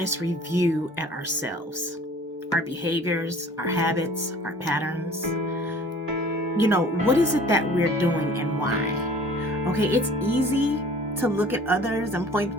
review at ourselves, our behaviors, our habits, our patterns. What is it that we're doing and why? Okay, it's easy to look at others and point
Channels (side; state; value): both; normal; correlation 0.49